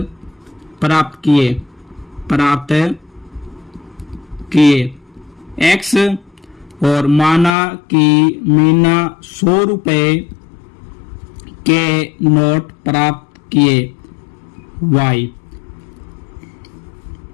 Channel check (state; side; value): drops out; right; at 7.5 s